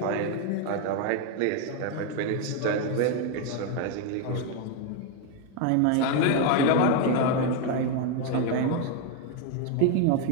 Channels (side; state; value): both; different; correlation 0.01